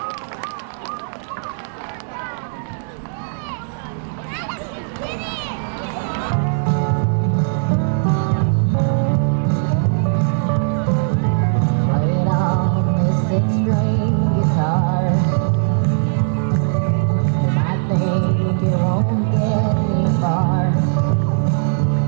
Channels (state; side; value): silent; left; digital silence